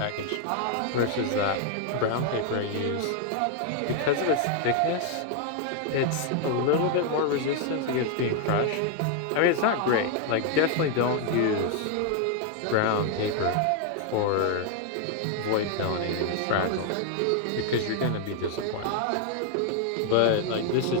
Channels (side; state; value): both; different; correlation 0.00